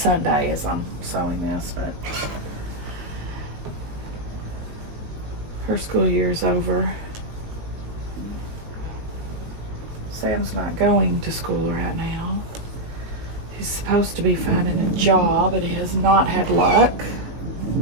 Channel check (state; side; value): late; left; 19 ms